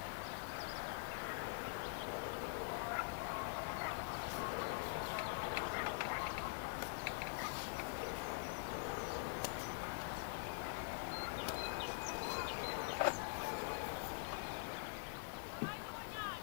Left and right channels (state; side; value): quieter; right; 38.4 dB